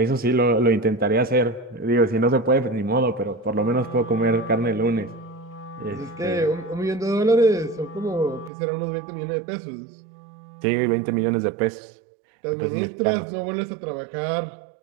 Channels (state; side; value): drops out; left; at 8.5 s